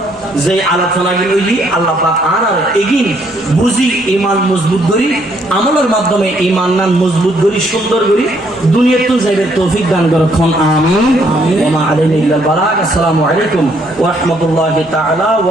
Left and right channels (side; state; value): both; normal; correlation 0.69